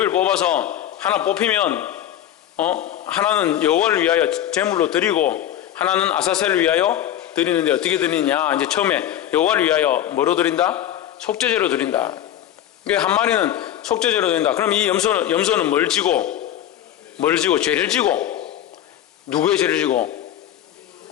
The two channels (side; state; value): right; quieter; 11.4 dB